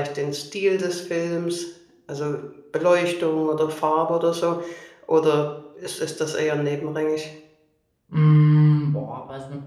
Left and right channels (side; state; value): both; identical; correlation 1.00